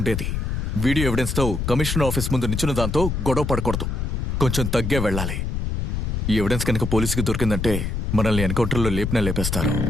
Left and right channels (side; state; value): left; noise; rumble, 1 dB below the sound